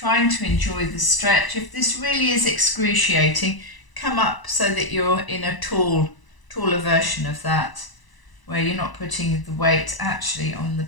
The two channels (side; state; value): right; late; 1.0 ms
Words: to enjoy the stretch. If this really is excruciating, come up so that you're in a taller version of that, where you're not putting the weight actually on the